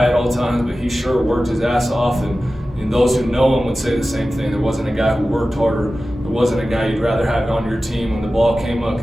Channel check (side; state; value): both; normal; correlation 0.95